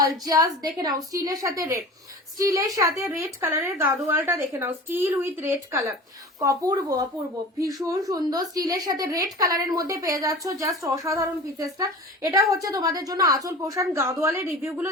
জাস্ট দেখে নাও, স্টিলের সাথে রেড, স্টিলের সাথে রেড কালারের গাদোয়ালটা দেখে নাও, স্টিল উইথ রেড কালার, অপূর্ব অপূর্ব, ভীষণ সুন্দর। স্টিলের সাথে রেড কালারের মধ্যে পেয়ে যাচ্ছ, জাস্ট অসাধারণ পিসেসটা। এটা হচ্ছে তোমাদের জন্য আঁচল পোষণ। গাদোয়ালের রিভিউ গুলো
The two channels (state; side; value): normal; both; correlation 0.37